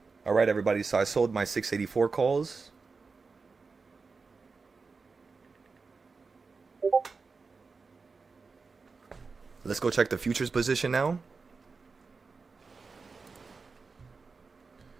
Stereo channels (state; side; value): quieter; left; 4.5 dB